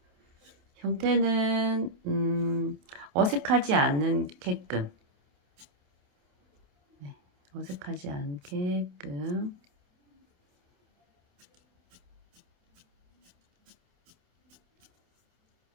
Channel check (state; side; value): late; left; 28 ms